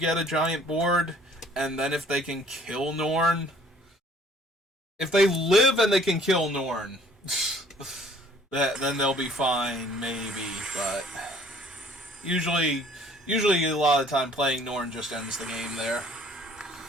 a giant board, and then if they can kill Norn... If they live and they can kill Norn, then they'll be fine, maybe, but... Usually a lot of the time playing Norn just ends the game there.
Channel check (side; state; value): both; normal; correlation 0.56